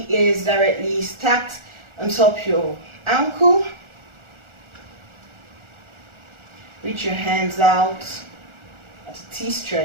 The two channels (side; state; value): left; late; 1.4 ms